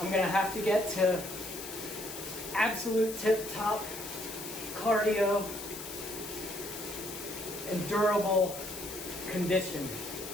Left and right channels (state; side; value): noise; left; hiss, 10 dB below the sound